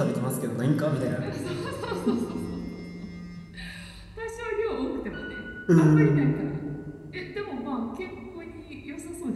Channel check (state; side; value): identical; both; correlation 1.00